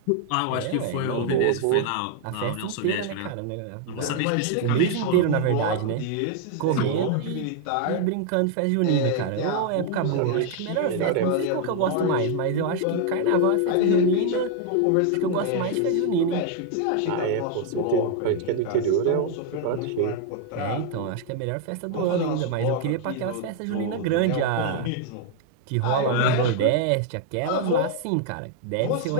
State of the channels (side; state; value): both; different; correlation 0.00